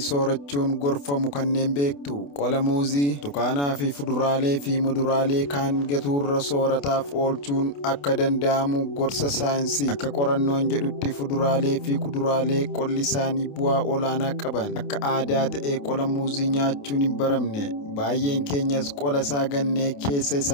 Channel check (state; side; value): late; right; 28 ms